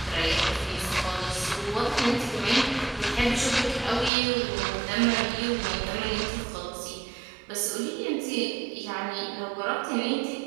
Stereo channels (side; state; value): left; drops out; at 4.1 s